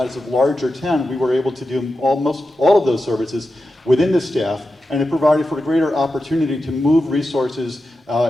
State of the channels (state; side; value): normal; both; correlation 0.91